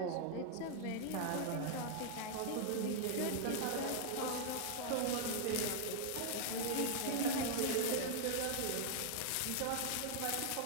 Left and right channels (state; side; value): different; both; correlation -0.01